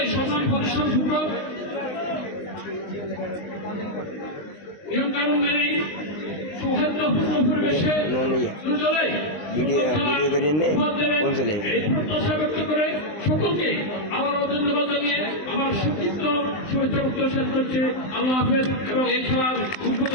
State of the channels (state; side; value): late; right; 20 ms